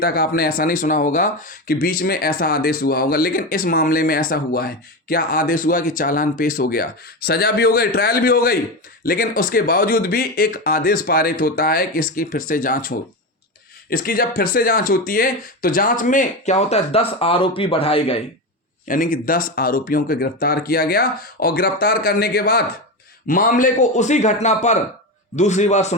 आपने ऐसा नहीं सुना होगा कि बीच में ऐसा आदेश हुआ होगा, लेकिन इस मामले में ऐसा हुआ है। क्या आदेश हुआ कि चालान पेश हो गया, सजा भी हो गई, ट्रायल भी हो गई, लेकिन उसके बावजूद भी एक आदेश पारित होता है कि इसकी फिर से जांच हो। इसकी जब फिर से जांच होती है तो जांच में क्या होता है, 10 आरोपी बढ़ाए गए, यानी कि 10 आरोपियों को गिरफ्तार किया गया। और गिरफ्तार करने के बाद मामले को उसी घटना पर दूसरी बार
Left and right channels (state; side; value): normal; both; correlation 0.18